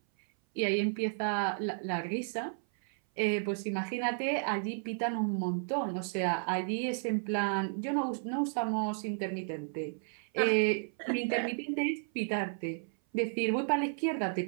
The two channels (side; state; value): left; silent; 56 dB below the other